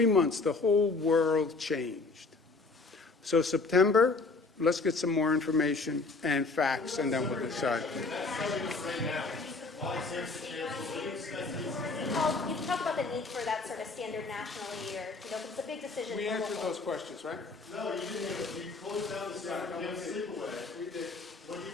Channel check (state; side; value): quieter; right; 3.8 dB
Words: months, the whole world changed. So September, let's get some more information and facts, and then we'll decide. You talk about the need for that sort of standard nationally, or, because it's a big decision. We answered those questions, right? No, you didn't. You closed down the center. You have sleep away. We did. What do